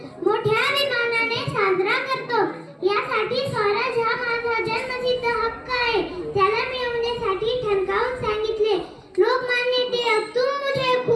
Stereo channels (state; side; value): identical; both; correlation 1.00